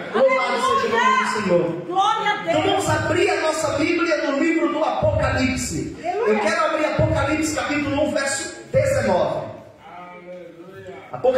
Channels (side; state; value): both; identical; correlation 1.00